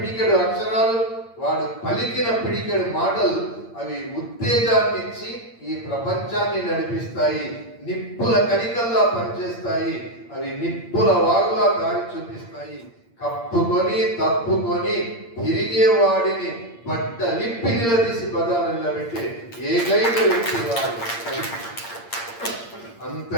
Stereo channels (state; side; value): late; right; 8.7 ms